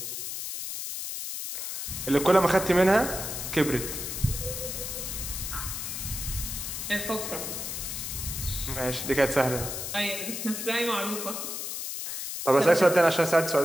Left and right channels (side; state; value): left; noise; hiss, 5 dB below the sound